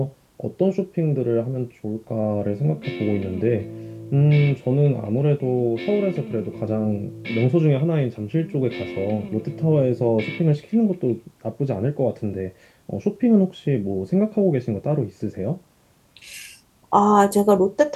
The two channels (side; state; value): both; identical; correlation 1.00